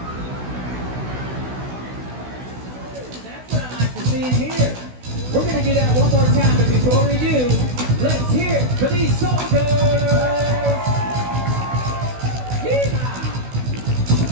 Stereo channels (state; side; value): late; left; 16 ms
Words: That's what I like to see in here. We're going to do that one more time. before we do, let's hear it for these soldiers! Yeehaw!